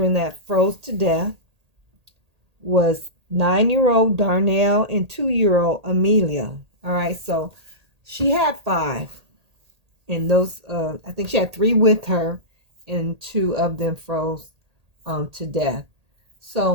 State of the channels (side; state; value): left; late; 1.8 ms